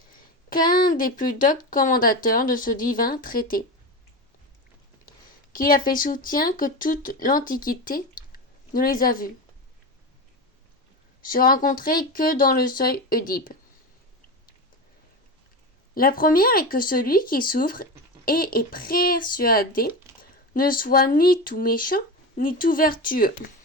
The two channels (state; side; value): normal; both; correlation 0.21